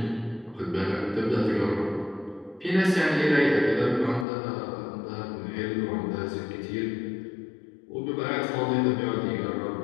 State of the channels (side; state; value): right; drops out; at 4.2 s